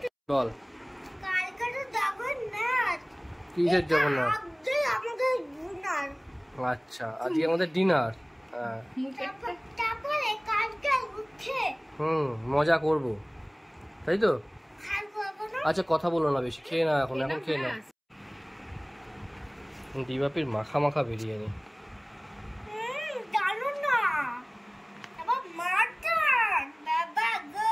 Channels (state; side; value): identical; both; correlation 1.00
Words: বল কিসের জগন্নাথ? আচ্ছা, আজকে আমাদের ডিনার। মজা করব, তাই তো? আচ্ছা কথা বলো না বেশি, খেয়ে না এখন খেয়ে না। ডিবাপির মাখা বিরিয়ানি।